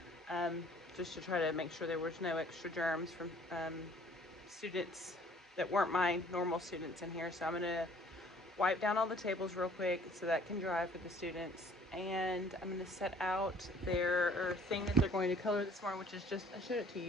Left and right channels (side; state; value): both; normal; correlation 0.56